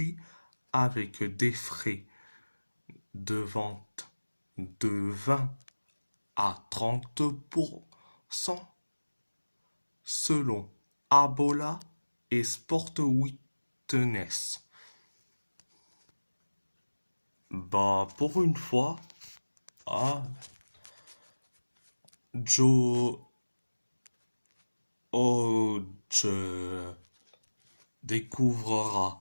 avec des frais de vente de 20 à 30% selon Abola et Sport Witness. Bah, pour une fois, ah, Joe Hodge découvrira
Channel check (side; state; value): both; inverted; correlation -1.00